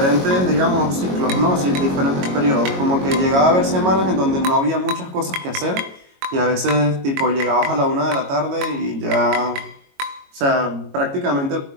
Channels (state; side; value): late; left; 22 ms